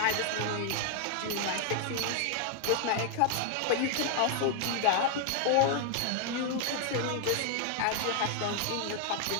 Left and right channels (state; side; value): different; both; correlation 0.00